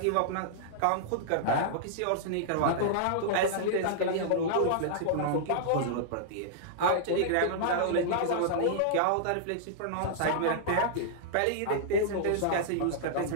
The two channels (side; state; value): both; different; correlation -0.02